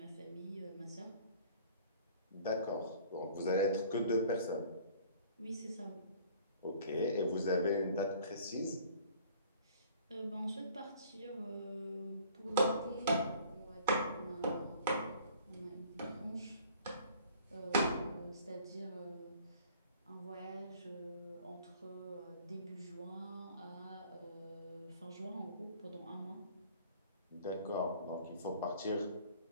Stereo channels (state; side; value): inverted; both; correlation -0.52